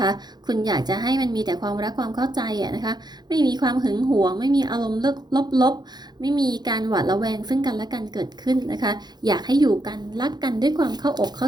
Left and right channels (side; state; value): left; late; 0.20 ms